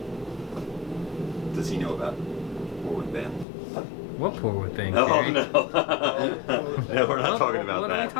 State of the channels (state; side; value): drops out; right; at 3.5 s